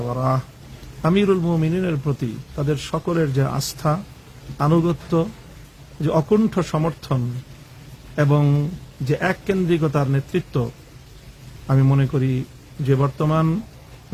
ওয়ারাহ আমিরুল মুমিনিনের প্রতি তাদের সকলের যে আস্থা, আনুগত্য, যে অকুণ্ঠ সমর্থন এবং যে এককেন্দ্রিকতার নেতৃত্ব, আমি মনে করি যে বর্তমান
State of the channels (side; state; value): both; identical; correlation 1.00